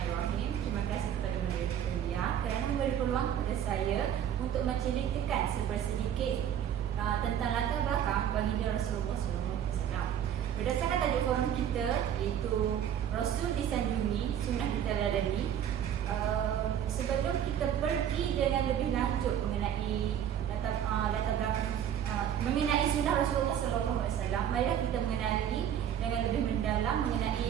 Terima kasih kepada moderator kerana memberi peluang kepada saya untuk menceritakan sedikit tentang latar belakang baginda Rasulullah SAW. Berdasarkan tajuk forum kita iaitu Rasul disanjungi, sunnah diteladani. Sebelum kita pergi dengan lebih lanjut mengenai latar belakang mengenai sunnah Rasulullah SAW, marilah kita mengenali dengan lebih mendalam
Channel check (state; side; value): quieter; left; 9.7 dB